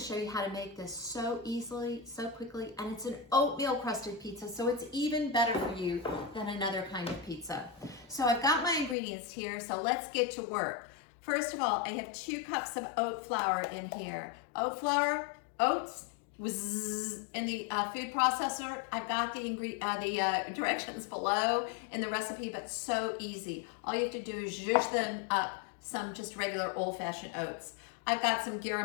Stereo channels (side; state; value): right; drops out; at 9.0 s